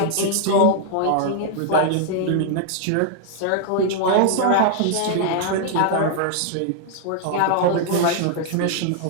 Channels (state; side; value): different; both; correlation -0.01